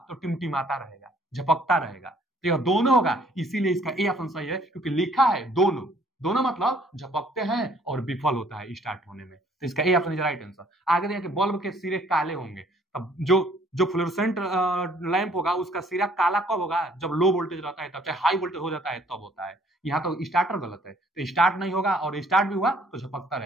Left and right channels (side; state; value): both; normal; correlation 0.61